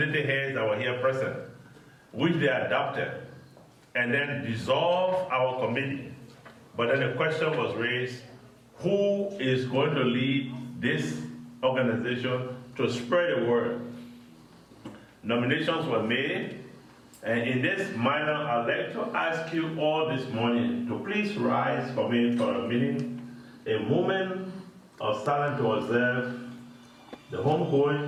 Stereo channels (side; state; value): both; identical; correlation 1.00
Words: heads that were here present, which they adopted, and then dissolved our committee. But then the question was raised, who is going to lead this organization to spread the word? Nominations were made, and in this manner, I'd like to ask you all this morning to please rise for me for a minute, a moment of silence to observe the